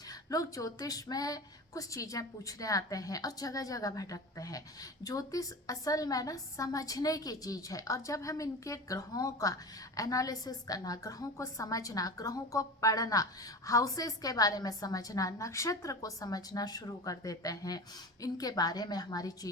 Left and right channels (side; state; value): both; normal; correlation 0.30